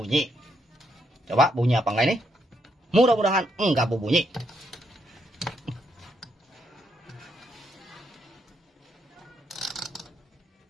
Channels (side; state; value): both; normal; correlation 0.76